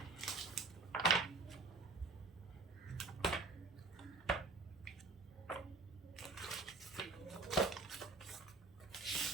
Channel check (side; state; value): left; quieter; 3.7 dB